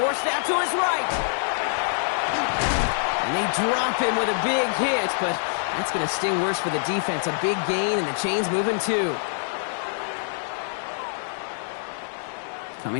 out to his right. And they drop him with a big hit, but that's going to sting worse for the defense. A big gain, and the chain's moving too.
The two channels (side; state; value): right; silent; digital silence